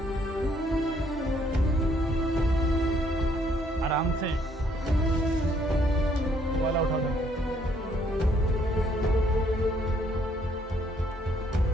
आराम से वाला उठा दो।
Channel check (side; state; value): both; normal; correlation 0.67